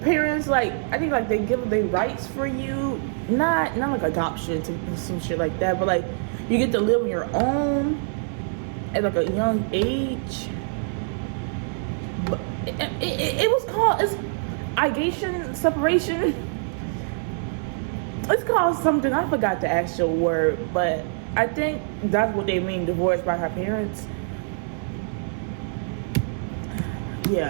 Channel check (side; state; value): left; silent; 62 dB below the other